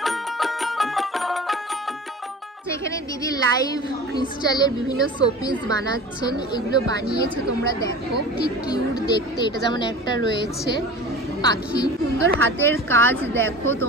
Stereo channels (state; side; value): normal; both; correlation 0.37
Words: এখানে দিদি লাইভ ক্রিস্টালের বিভিন্ন শোপিস বানাচ্ছেন। এগুলো বানিয়েছে, তোমরা দেখো কি কিউট দেখতে। এটা যেমন একটা রয়েছে পাখি, সুন্দর হাতের কাজ। দেখো